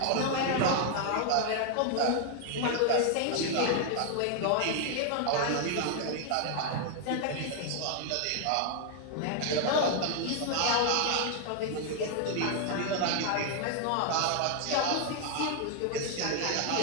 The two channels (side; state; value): both; different; correlation 0.00